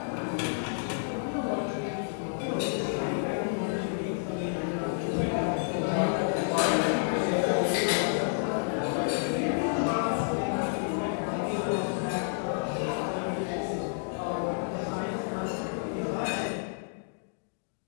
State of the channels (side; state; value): right; silent; digital silence